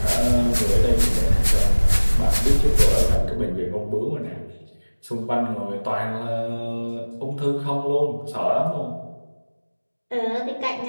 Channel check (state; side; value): inverted; both; correlation -1.00